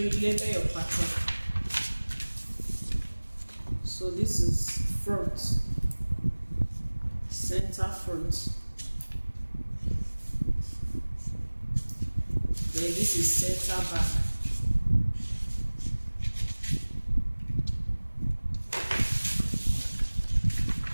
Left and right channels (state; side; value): inverted; both; correlation -1.00